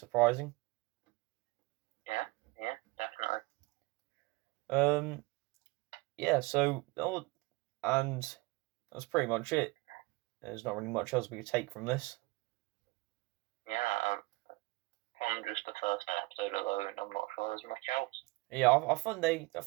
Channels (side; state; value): left; quieter; 23.5 dB